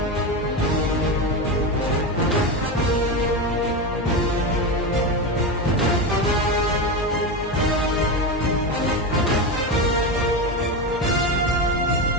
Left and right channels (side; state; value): both; normal; correlation 0.17